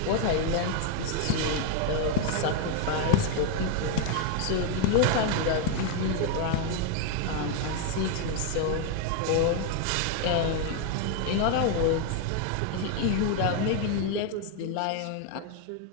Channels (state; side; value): different; both; correlation 0.00